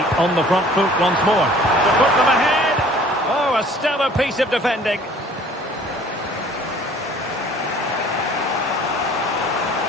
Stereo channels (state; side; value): normal; both; correlation 0.52